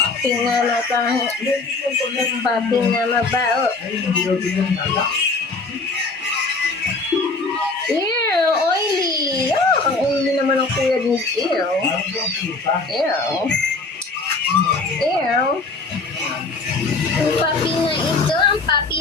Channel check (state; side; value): quieter; right; 3.7 dB